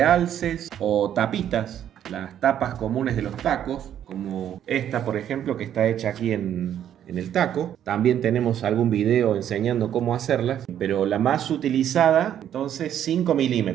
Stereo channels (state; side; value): quieter; left; 10.2 dB